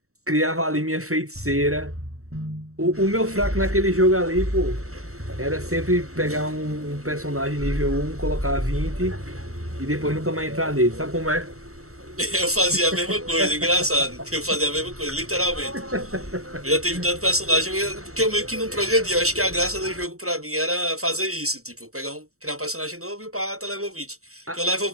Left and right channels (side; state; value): left; late; 0.64 ms